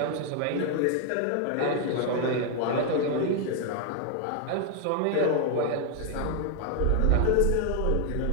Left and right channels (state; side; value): different; both; correlation 0.00